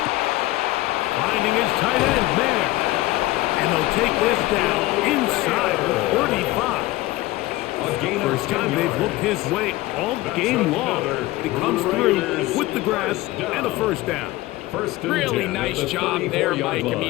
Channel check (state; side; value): quieter; right; 18.4 dB